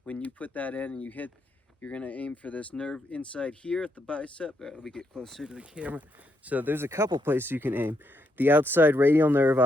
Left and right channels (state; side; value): normal; both; correlation 0.77